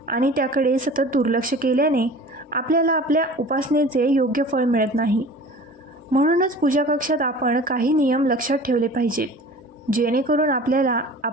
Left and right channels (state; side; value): normal; both; correlation 0.42